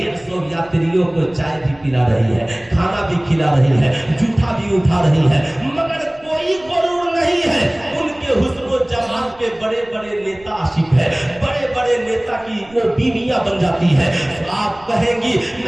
یاتریوں کو چائے بھی پلا رہی ہے, کھانا بھی کھلا رہی ہے, جوٹا بھی اٹھا رہی ہے, مگر کوئی غرور نہیں ہے. ان کے حسن و جمال کے بڑے بڑے نیتا عاشق ہے, بڑے بڑے نیتا کی وہ بیویاں بن جاتی ہے. آپ کہیں گی,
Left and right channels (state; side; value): noise; right; rumble, 27 dB below the sound